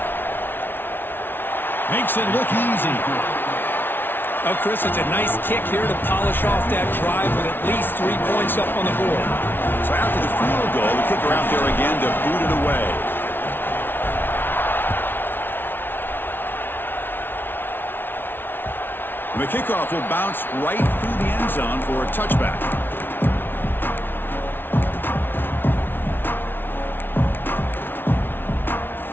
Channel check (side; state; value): right; late; 0.10 ms